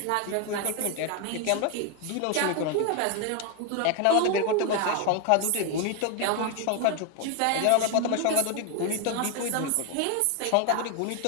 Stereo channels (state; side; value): different; both; correlation 0.01